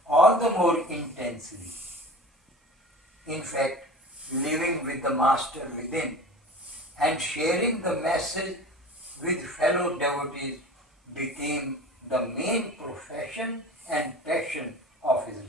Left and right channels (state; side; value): normal; both; correlation 0.37